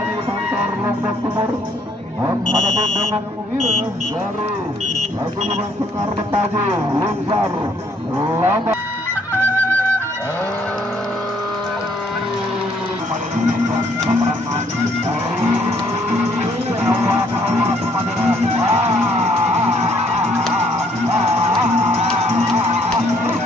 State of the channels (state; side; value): normal; both; correlation 0.66